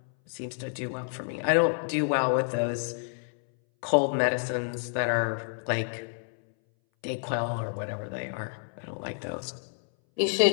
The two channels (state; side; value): silent; right; 59 dB below the other